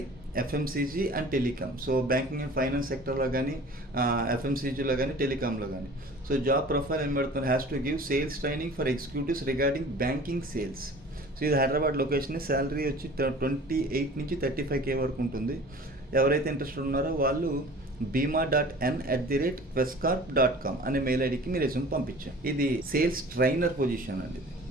FMCG and telecom. So banking and finance సెక్టర్లో కానీ, ఎఫ్ఎంసీజీలో కానీ, టెలికామ్లో కానీ. సో జాబ్ ప్రొఫైల్ ఏం పెడుతున్నారు, has to give sales training for executives regarding banking sales. So ఇది Hyderabad location. Salary వచ్చి 28 నుంచి 35K వరకు ఉంటుంది. ఎవరైతే ఇంట్రెస్టెడ్ ఉన్నారో వాళ్ళు bima.n@questcorp.com అనే మెయిల్ ఐడికి మీరు రెజ్యూమ్ పంపించాం. ఇది సేల్స్ ట్రైనర్ పొజిషన్ అండి.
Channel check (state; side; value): normal; both; correlation 0.44